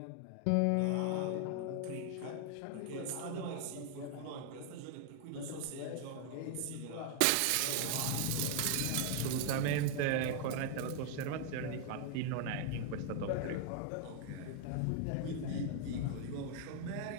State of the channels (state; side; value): different; both; correlation 0.00